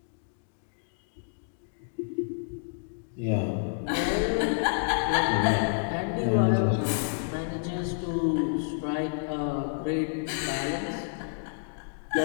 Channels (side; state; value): right; silent; digital silence